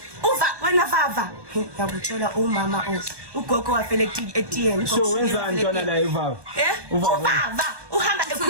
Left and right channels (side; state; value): left; late; 1.2 ms